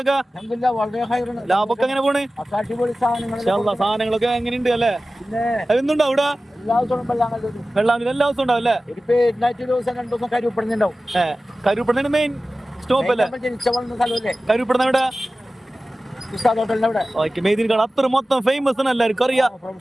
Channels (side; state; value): both; normal; correlation 0.96